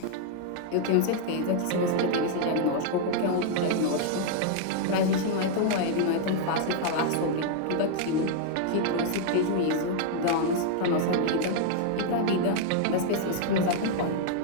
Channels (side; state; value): both; different; correlation 0.00